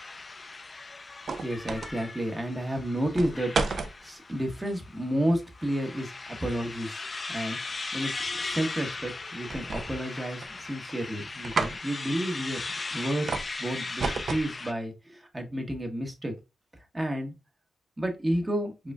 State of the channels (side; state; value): both; normal; correlation 0.91